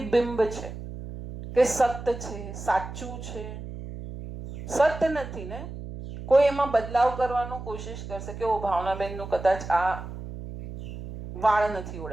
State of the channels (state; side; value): noise; right; hum, 10 dB below the sound